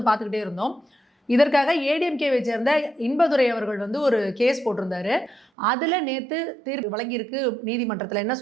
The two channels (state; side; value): drops out; left; at 5.5 s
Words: பார்த்துக்கிட்டே இருந்தோம். இதற்காக ஏடிஎம்கேவை சேர்ந்த இன்பதுரை அவர்கள் வந்து ஒரு கேஸ் போட்டிருந்தாரு. அதில் நேற்று தீர்ப்பு வழங்கியிருக்கு நீதிமன்றத்தில். என்ன